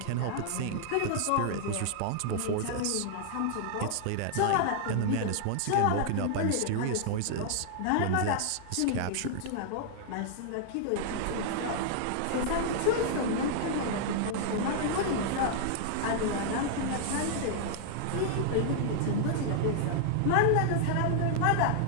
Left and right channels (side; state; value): both; different; correlation -0.01